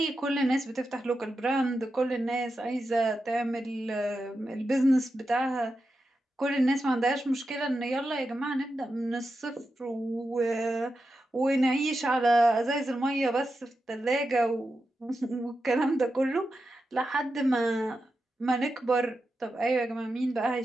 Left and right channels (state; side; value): normal; both; correlation 0.89